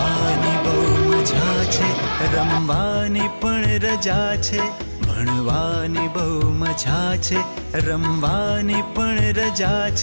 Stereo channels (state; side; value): inverted; both; correlation -1.00